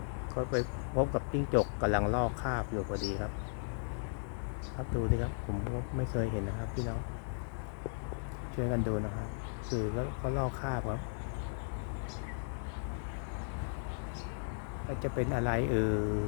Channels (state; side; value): silent; right; 54 dB below the other